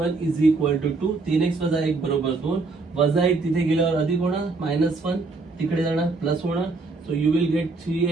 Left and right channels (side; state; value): left; quieter; 3.8 dB